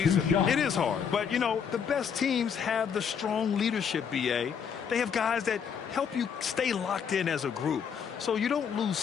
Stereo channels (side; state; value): right; quieter; 7.2 dB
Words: It is hard, but, you know, the best teams have the strong leadership, B.A. They have guys that help you stay locked in as a group, so you don't lose